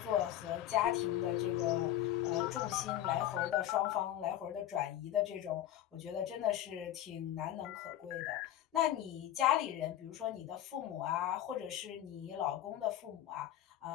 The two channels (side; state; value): right; quieter; 12.2 dB